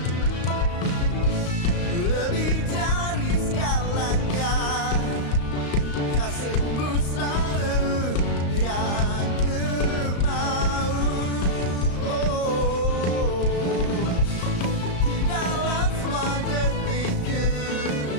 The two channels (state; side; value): late; right; 35 ms